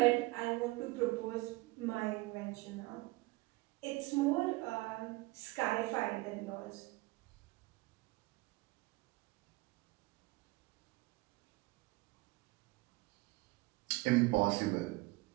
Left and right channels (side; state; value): left; quieter; 22.5 dB